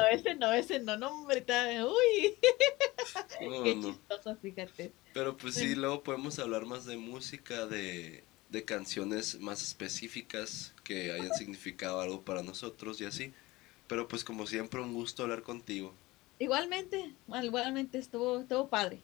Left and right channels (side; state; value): right; quieter; 20.4 dB